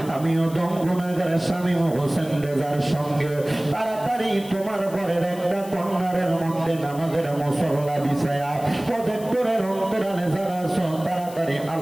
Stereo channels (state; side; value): noise; left; hiss, 19 dB below the sound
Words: আমিও দম গুনাহগার শামীম হোসেন রেজার সঙ্গে তাড়াতাড়ি তোমার ঘরের একটা কর্নারের মধ্যে নামাজের মুসল্লা বিছায়া প্রজেক্টরের অন্তরালে যারা আছো তাড়াতাড়ি